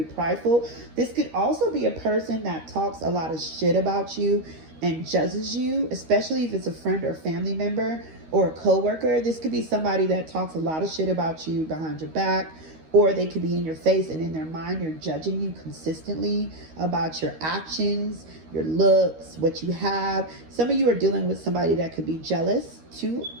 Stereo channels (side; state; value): left; late; 13 ms